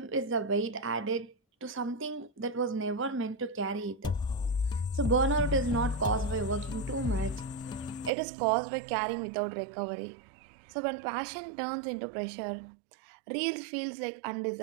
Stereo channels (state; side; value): drops out; left; at 8.1 s